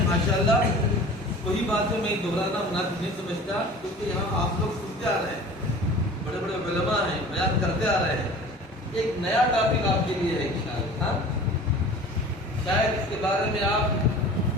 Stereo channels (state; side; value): normal; both; correlation 0.42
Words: ماشاءاللہ. وہی باتیں میں دہرانا مناسب نہیں سمجھتا، کیونکہ یہاں آپ لوگ سنتے آ رہے ہیں، بڑے علماء ہیں، بیان کرتے آ رہے ہیں. ایک نیا ٹاپک آپ کے لیے ہے انشاءاللہ. شاید اس کے بارے میں آپ